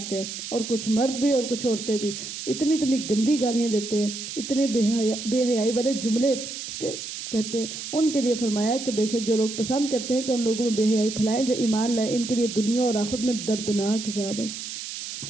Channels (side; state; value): right; noise; hiss, 8 dB below the sound